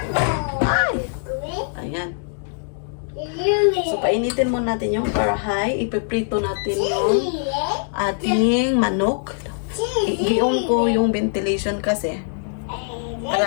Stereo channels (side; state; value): right; silent; digital silence